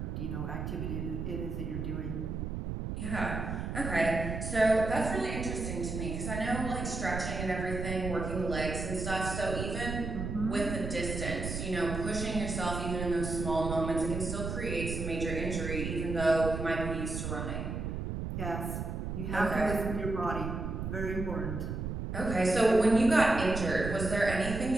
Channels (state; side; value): noise; right; rumble, 4 dB below the sound